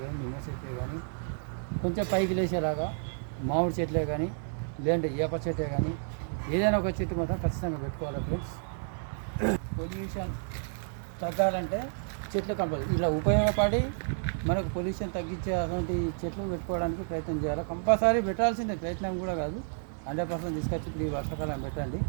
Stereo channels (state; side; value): silent; left; digital silence